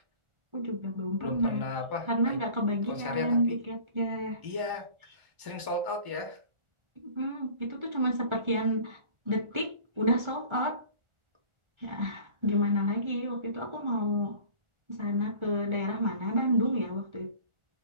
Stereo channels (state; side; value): late; left; 1.4 ms